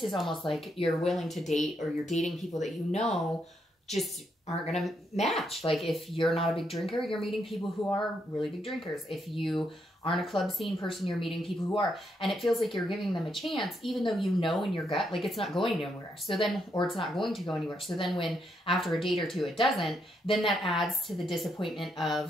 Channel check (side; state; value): both; normal; correlation 0.78